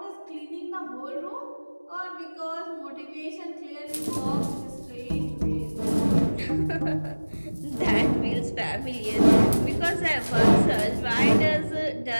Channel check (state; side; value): inverted; both; correlation -1.00